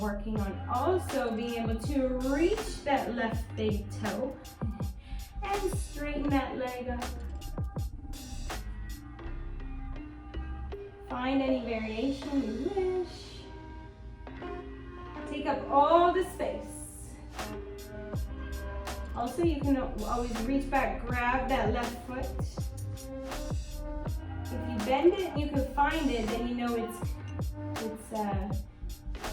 working on also being able to reach that left big toe and straighten that leg up. Find any variation you wish. Take up all the space. Also, you can always reach back, grab that left foot. If you bend it and you can find it, then you know it's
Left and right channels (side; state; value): both; identical; correlation 1.00